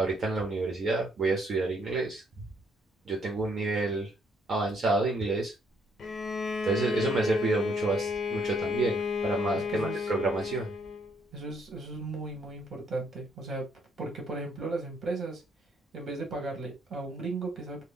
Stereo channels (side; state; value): both; normal; correlation 0.69